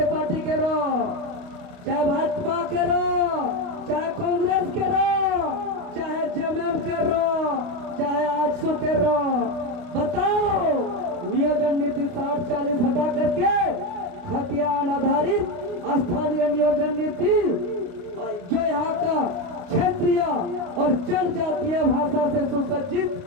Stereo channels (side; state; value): left; late; 29 ms